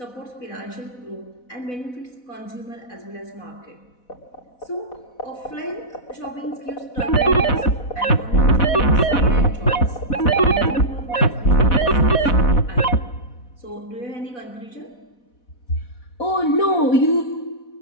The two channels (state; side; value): late; right; 4.1 ms